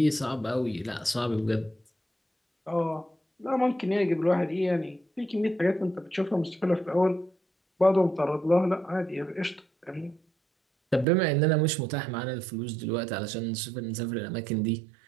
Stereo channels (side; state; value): left; drops out; at 11.1 s